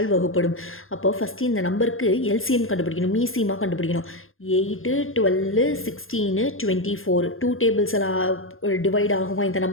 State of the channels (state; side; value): late; right; 0.60 ms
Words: வகுப்படும். அப்போ ஃபஸ்ட்டு இந்த நம்பருக்கு எல்சிஎம் கண்டுபிடிக்கணும், மீசியமாக கண்டுபிடிக்கணும். 8, 12, 16, 24 டூ டேபிள்ஸில் டிவைட் ஆகுமா இந்த